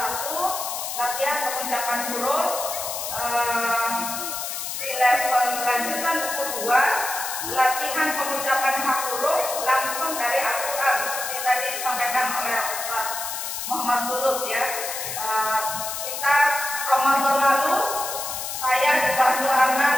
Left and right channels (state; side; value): noise; left; hiss, 5 dB below the sound